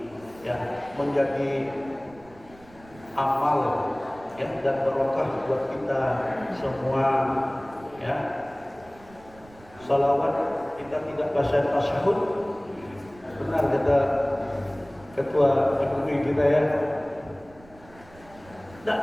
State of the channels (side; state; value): right; noise; rumble, 24 dB below the sound